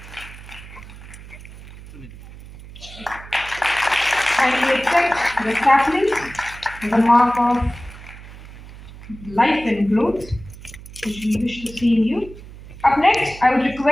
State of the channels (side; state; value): right; noise; hum, 17 dB below the sound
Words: Kindly accept the sapling, the mark of life and growth, which we wish to see in you. Up next, I would